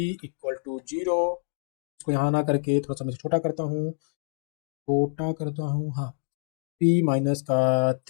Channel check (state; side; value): silent; right; digital silence